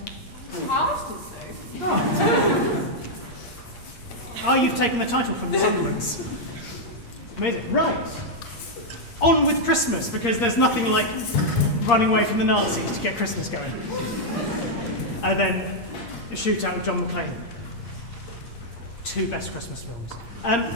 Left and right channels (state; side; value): late; right; 8.6 ms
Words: Ours does so. Oh. Oh, you've taken the title from the Sunderlands. Amazing. Right. On with Christmas, because there's nothing like running away from the Nazis to get Christmas going. And then a shootout with John McClane. 2 best Christmas films.